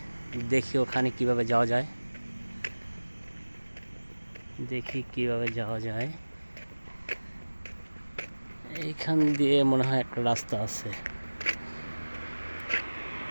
দেখি ওখানে কিভাবে যাওয়া যায়। এইখান দিয়ে মনে হয় একটা রাস্তা আছে।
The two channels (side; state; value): both; inverted; correlation -1.00